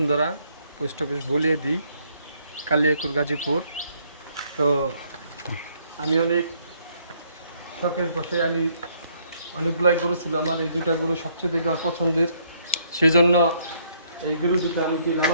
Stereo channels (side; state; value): both; inverted; correlation -0.68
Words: পোস্ট অফিস বলিয়ে দিই, কালিয়াকুর, গাজীপুর। তো আমি অনেক শখের বসে আমি অনেকগুলাই গরু ছিল আমার, এই দুটা গরু সবচেয়ে দেখে আমার পছন্দের, সেই জন্য এই গরু দুটো আমি কি